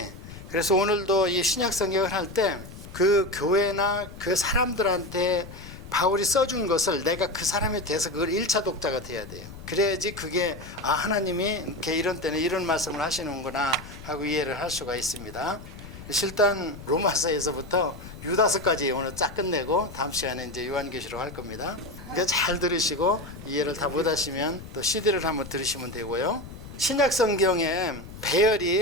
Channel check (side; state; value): left; noise; rumble, 14 dB below the sound